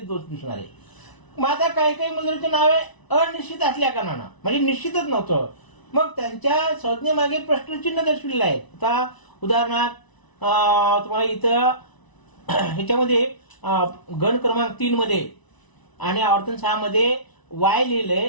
दिसणार आहे. मग आता काही काही मुद्रांची नावे अनिश्चित असल्या कारणानं म्हणजे निश्चितच नव्हतं, मग त्यांच्या संज्ञेमागे प्रश्नचिन्ह दर्शविलेलं आहे. आता उदाहरणार्थ तुम्हाला इथं ह्याच्यामध्ये गण क्रमांक 3 मध्ये आणि आवर्तन 6 मध्ये वाय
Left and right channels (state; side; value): late; right; 1.0 ms